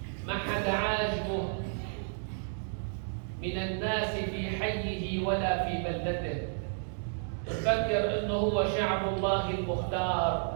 ما حدا عاجبه من الناس في حيه ولا في بلدته، يفكر انه هو شعب الله المختار،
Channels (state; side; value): silent; left; digital silence